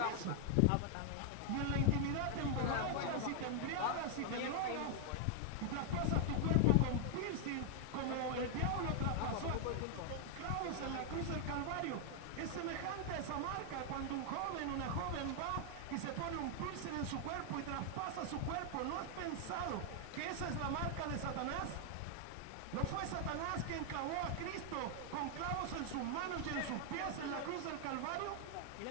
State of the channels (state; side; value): different; both; correlation 0.00